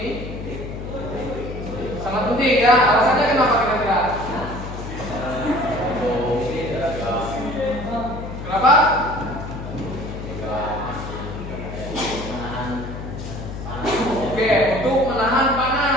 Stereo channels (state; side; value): noise; left; hum, 8 dB below the sound